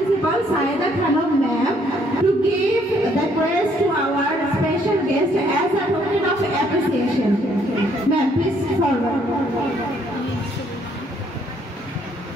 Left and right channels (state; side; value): normal; both; correlation 0.67